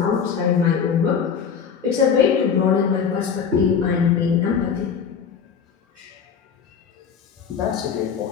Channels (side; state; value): right; quieter; 6.8 dB